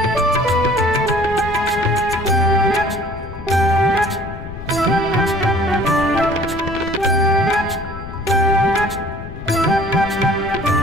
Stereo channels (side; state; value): left; noise; rumble, 11 dB below the sound